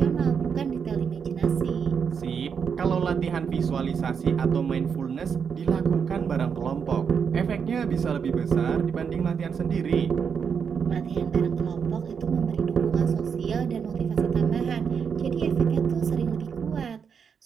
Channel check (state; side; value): quieter; left; 6.7 dB